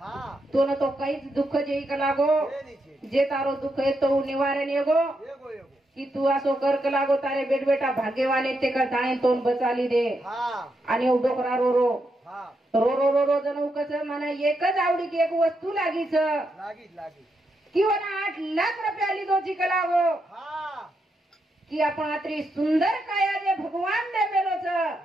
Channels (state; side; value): normal; both; correlation 0.82